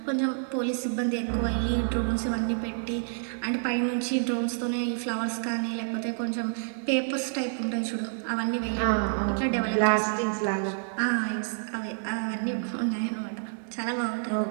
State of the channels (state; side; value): silent; left; 57 dB below the other